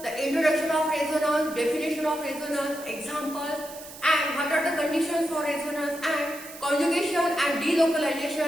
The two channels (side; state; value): right; noise; hiss, 15 dB below the sound